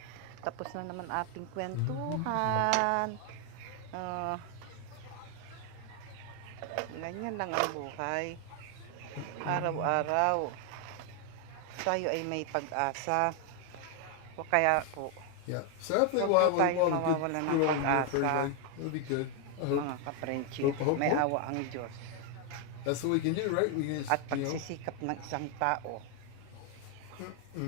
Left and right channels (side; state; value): both; different; correlation 0.00